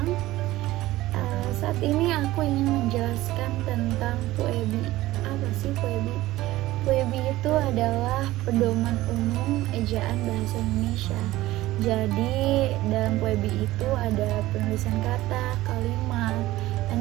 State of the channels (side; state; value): left; quieter; 16.8 dB